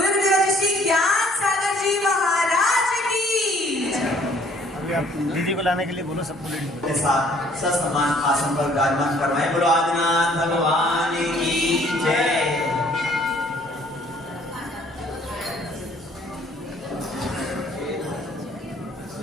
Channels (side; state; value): both; normal; correlation 0.60